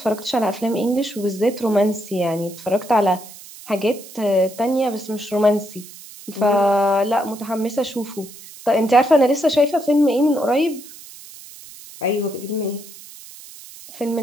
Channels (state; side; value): noise; right; hiss, 18 dB below the sound